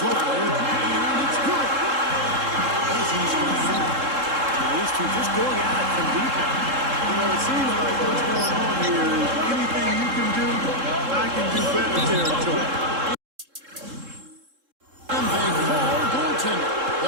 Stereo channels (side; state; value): left; late; 3.7 ms